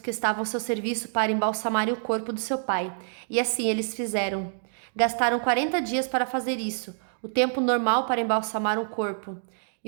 que estavam ao seu serviço para embalsamarem o corpo do seu pai, e assim eles fizeram. Gastaram 40 dias para fazer isso, o tempo normal para embalsamar um corpo,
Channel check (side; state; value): left; silent; digital silence